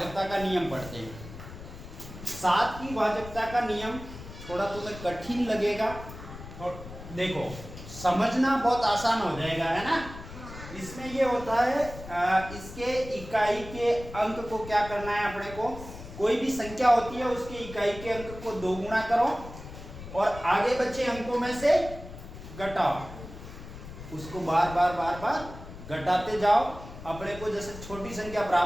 का नियम पढ़ते हैं। 7 की भाजकता का नियम थोड़ा तुम्हें कठिन लगेगा और देखो समझना बहुत आसान हो जाएगा, है ना। इसमें ये होता है इसके इकाई के अंक को क्या करना है अपने को। कोई भी संख्या होती है उसके इकाई के अंक को 2 गुना करो और आगे बचे अंकों में से घटाओ, उसको बार बार घटाते जाओ। अपने को जैसे छोटी संख्या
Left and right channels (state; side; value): noise; left; rumble, 13 dB below the sound